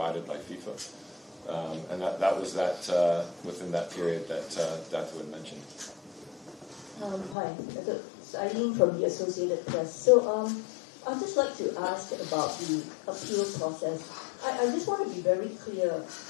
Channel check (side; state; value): right; drops out; at 7.4 s